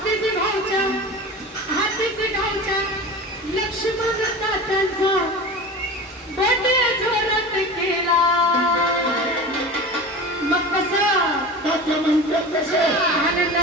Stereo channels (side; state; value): both; normal; correlation 0.32